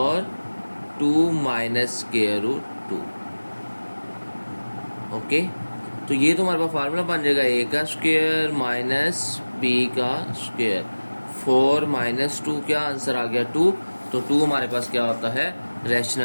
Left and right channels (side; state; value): both; inverted; correlation -1.00